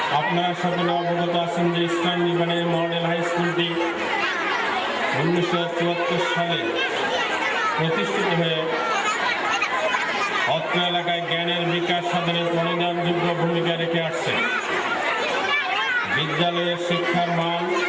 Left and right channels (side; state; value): both; identical; correlation 1.00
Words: আপনারা সকলে অবগত আছেন যে ইস্টার্ন ডিভিশনারি মডেল হাই স্কুলটি 1974 সালে প্রতিষ্ঠিত হয়ে অত্র এলাকায় জ্ঞানের বিকাশ সাধনে পরিণামযোগ্য ভূমিকা রেখে আসছে। বিদ্যালয়ের শিক্ষার মান,